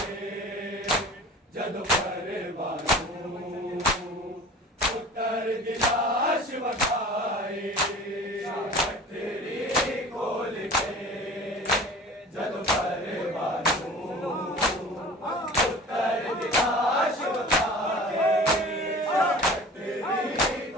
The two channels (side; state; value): both; normal; correlation 0.41